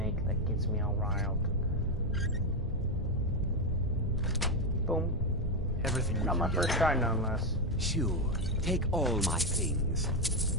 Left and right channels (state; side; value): normal; both; correlation 0.06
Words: that gets me all riled. Boom. Everything we Not can my get. first try, nonetheless. Sure. Take all my things,